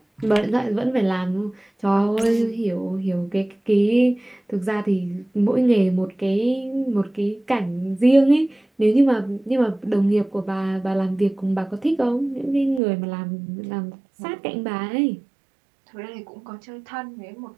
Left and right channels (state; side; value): drops out; left; at 12.8 s